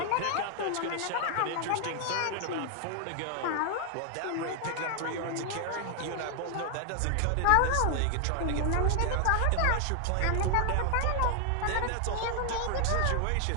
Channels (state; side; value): different; both; correlation 0.00